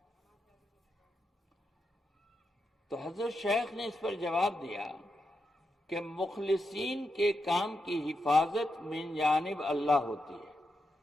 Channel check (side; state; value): both; normal; correlation 0.86